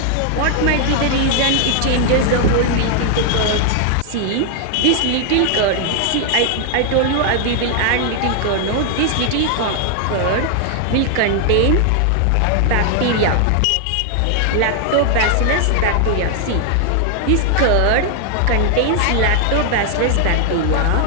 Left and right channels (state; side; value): different; both; correlation 0.00